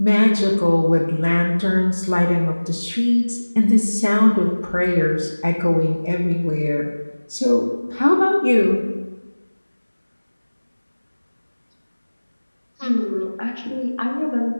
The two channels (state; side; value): inverted; both; correlation -1.00